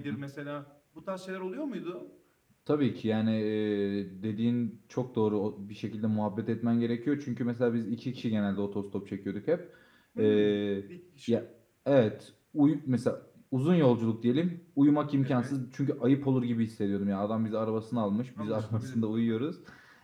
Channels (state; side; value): identical; both; correlation 1.00